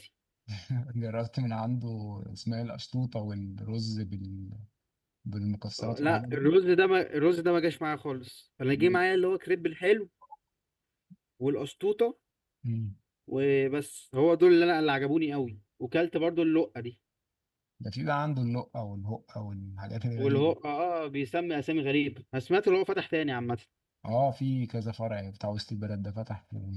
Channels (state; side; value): identical; both; correlation 1.00